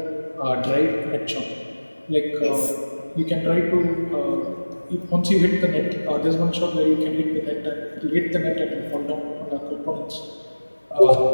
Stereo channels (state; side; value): inverted; both; correlation -1.00